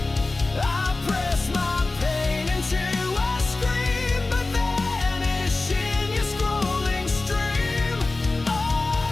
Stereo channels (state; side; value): quieter; right; 3.3 dB